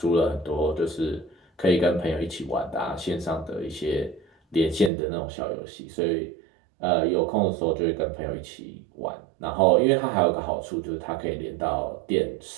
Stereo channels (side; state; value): left; drops out; at 4.9 s